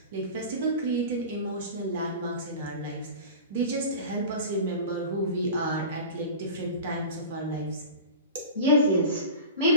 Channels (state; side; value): inverted; both; correlation -0.32